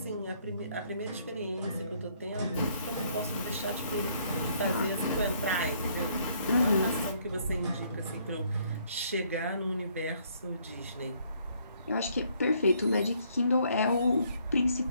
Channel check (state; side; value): inverted; both; correlation -0.67